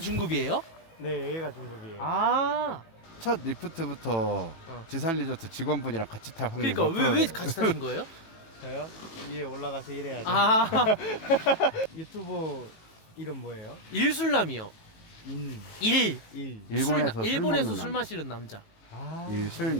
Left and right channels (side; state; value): right; late; 18 ms